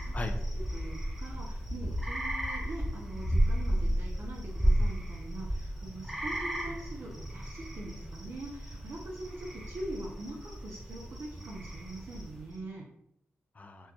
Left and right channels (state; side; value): normal; both; correlation 0.95